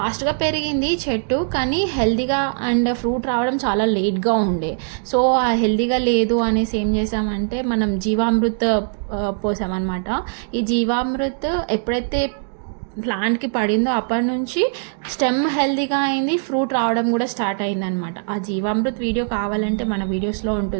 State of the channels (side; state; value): left; silent; digital silence